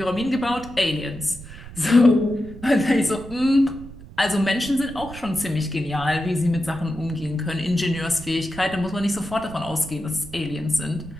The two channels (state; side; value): noise; right; rumble, 15 dB below the sound